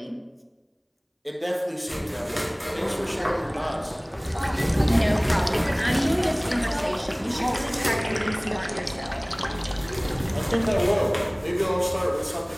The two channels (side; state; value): both; identical; correlation 1.00